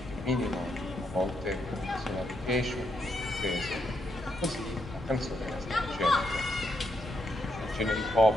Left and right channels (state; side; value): normal; both; correlation 0.79